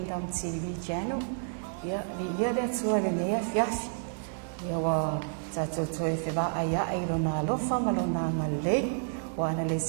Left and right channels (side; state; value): left; silent; digital silence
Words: TV channel. Ia li ia le atua le nea fiafi. Ia wa tatou toe whewa aia ai rona alofa malona ngalei. Wa ana le